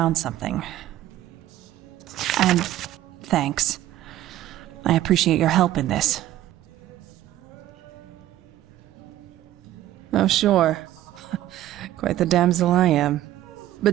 something. And thanks. I appreciate your help in this. Oh, sure. Quite the damsel I am.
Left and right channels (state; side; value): quieter; left; 13.8 dB